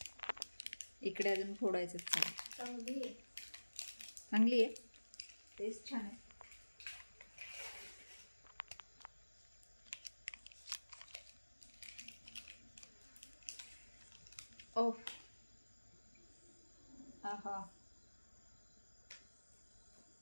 इकडे अजून फोडायचं. चांगली आहे, टेस्ट छान आहे. ओ आहा,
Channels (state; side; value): inverted; both; correlation -1.00